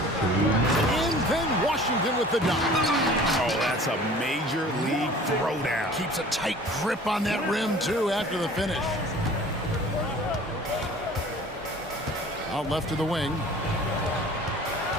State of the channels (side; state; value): both; normal; correlation 0.46